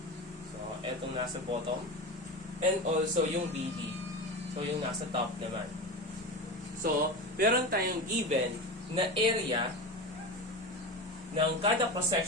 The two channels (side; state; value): both; normal; correlation 0.24